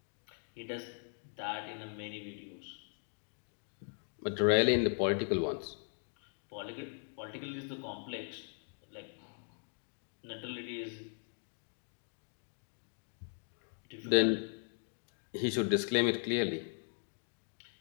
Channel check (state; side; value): silent; right; 52 dB below the other